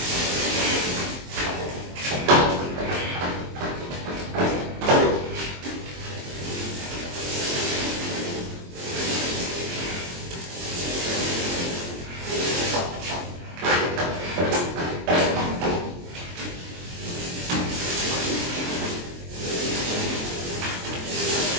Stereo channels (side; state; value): left; late; 23 ms